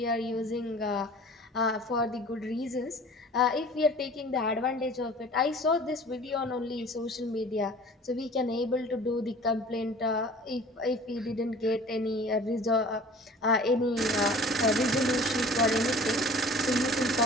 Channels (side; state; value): both; normal; correlation 0.46